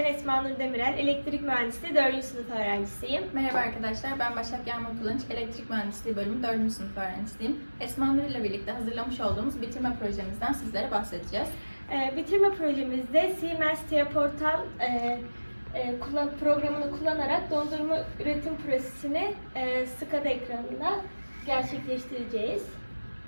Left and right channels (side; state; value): both; inverted; correlation -1.00